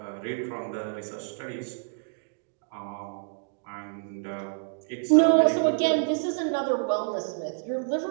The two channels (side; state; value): left; silent; digital silence